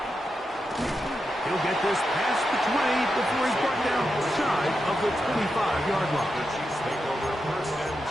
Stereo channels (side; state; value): both; normal; correlation 0.87